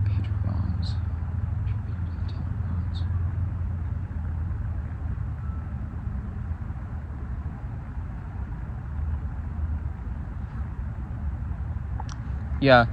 Page of Wands. Yeah,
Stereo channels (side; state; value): both; identical; correlation 1.00